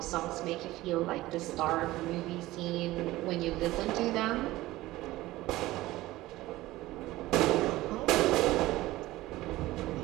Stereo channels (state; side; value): quieter; left; 17.5 dB